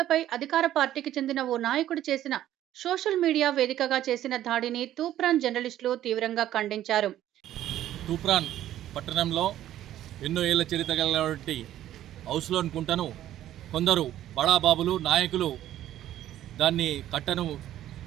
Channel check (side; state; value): left; quieter; 12.6 dB